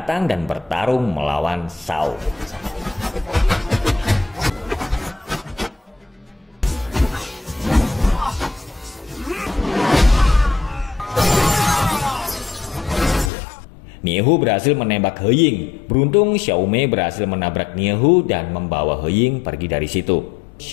dan bertarung melawan Shao. Niehu berhasil menembak He Ying. Beruntung Xiaomei berhasil menabrak Niehu dan membawa He Ying pergi dari situ.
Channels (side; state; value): right; drops out; at 13.3 s